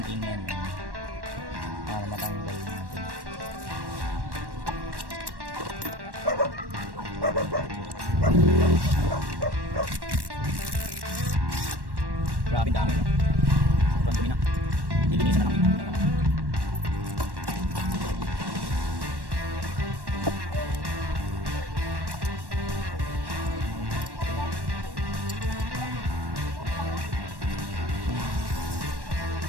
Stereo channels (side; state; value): left; late; 1.1 ms